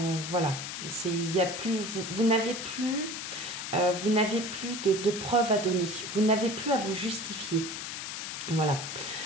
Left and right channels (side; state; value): left; noise; hiss, 6 dB below the sound